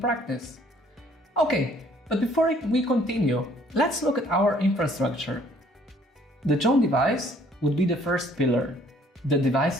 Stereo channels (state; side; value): normal; both; correlation 0.60